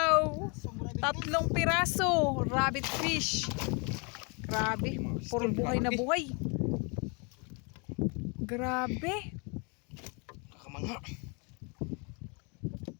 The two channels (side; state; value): right; quieter; 33.3 dB